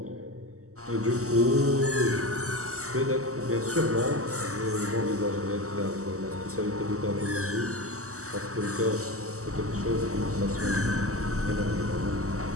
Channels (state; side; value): late; left; 0.65 ms